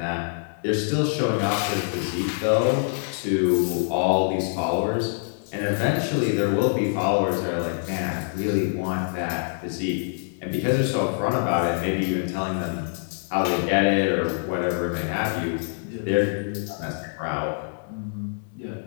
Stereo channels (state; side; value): silent; right; digital silence